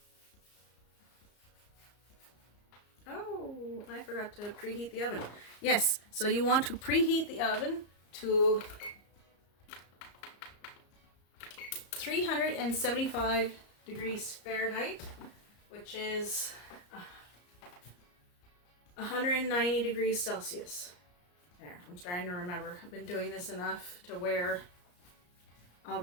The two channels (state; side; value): late; right; 34 ms